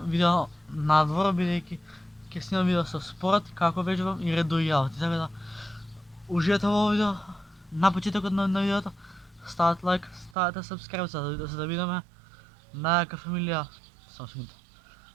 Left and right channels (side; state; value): left; drops out; at 10.4 s